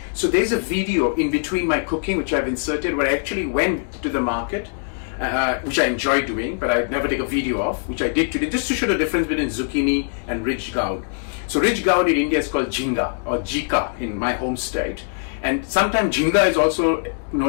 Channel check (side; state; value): right; silent; 64 dB below the other